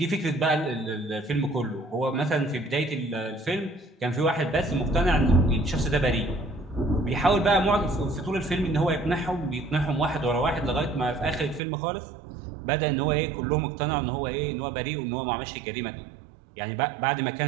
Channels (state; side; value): drops out; left; at 11.6 s